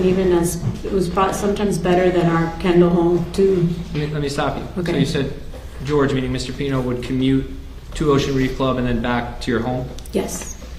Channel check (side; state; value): both; identical; correlation 1.00